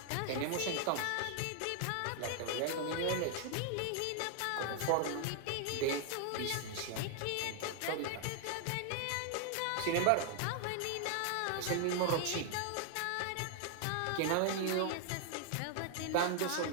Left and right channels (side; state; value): both; different; correlation 0.00